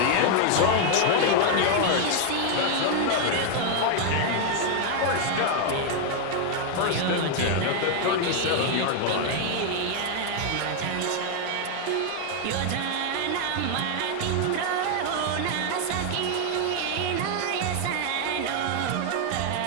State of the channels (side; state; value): both; different; correlation 0.00